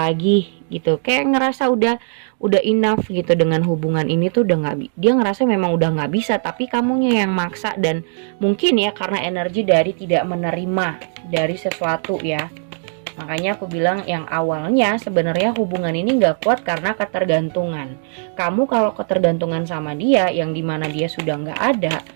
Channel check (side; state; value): left; silent; digital silence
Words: gitu, kayak ngerasa udah enough gitu dengan hubungan ini tuh udah dia ngerasa memang udah nggak bisa, tapi kamunya yang maksa. Dan mungkin ya karena energi dari tidak menerima dari sesuatu ya. Makanya aku bilang yang awalnya sebenarnya hubungan ini nggak kuat karena ketergantungan. Kamu kalau ketergantungan sama dia yang dimana dia sudah nggak ada,